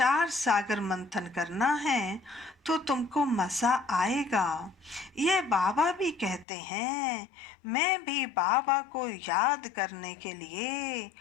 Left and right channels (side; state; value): right; drops out; at 6.5 s